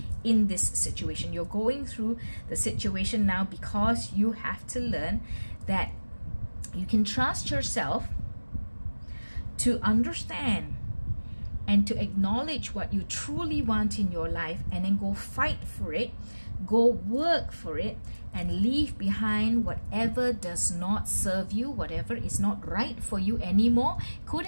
in this situation. You're going through the situation now because you have to learn that you can trust yourself to understand and to acknowledge what you truly want in your life, and then go fight for it, go work for it, and leave behind whatever does not serve you, whatever is not right for you anymore. Could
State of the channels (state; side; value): inverted; both; correlation -1.00